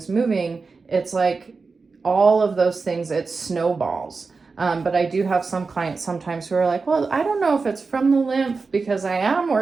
moving, it's like all of those things, it snowballs. But I do have some clients sometimes who are like, well, I don't know if it's from the lymph, because I am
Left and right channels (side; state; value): left; quieter; 4.4 dB